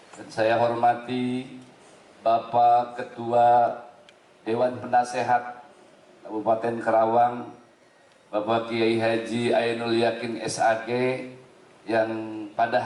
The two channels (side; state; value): both; identical; correlation 1.00